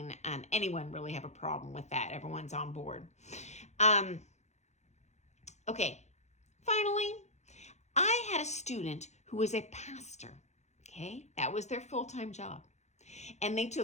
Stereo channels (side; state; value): right; late; 0.33 ms